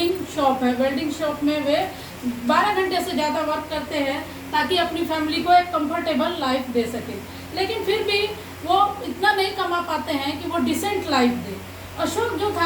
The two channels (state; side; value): identical; both; correlation 1.00